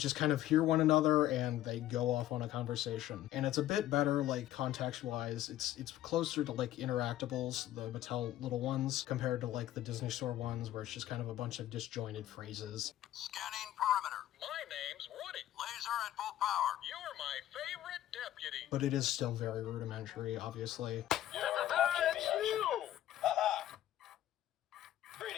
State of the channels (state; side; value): quieter; right; 13.2 dB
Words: kind of hear one another and they go off on a conversation. And it's a bit better like context-wise. It's closer to like Interactables, the Mattel little ones, compared to like the Disney Store ones where it's just kind of a bunch of disjointed phrases. Scanning perimeter. My name's Woody. Laser at full power. You're my favorite deputy. deputy. But it is still very rudimentary, obviously. That's you! Haha.